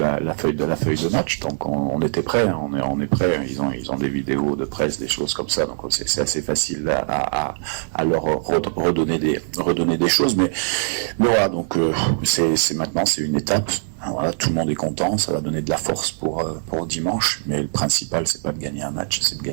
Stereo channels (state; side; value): silent; left; digital silence